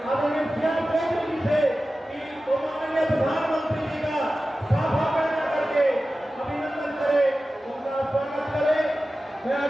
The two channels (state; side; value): normal; both; correlation 0.95